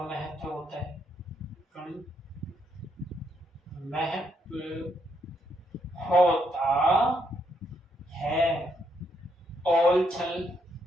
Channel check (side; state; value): both; normal; correlation 0.75